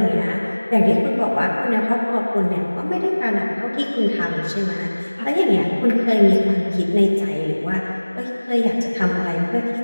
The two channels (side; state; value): both; inverted; correlation -1.00